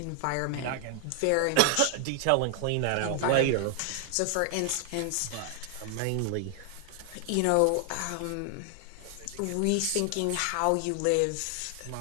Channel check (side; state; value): both; different; correlation 0.00